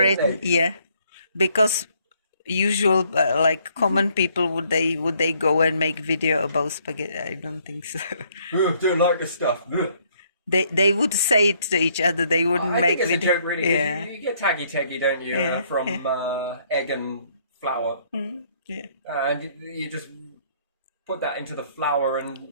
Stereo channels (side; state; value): both; inverted; correlation -0.66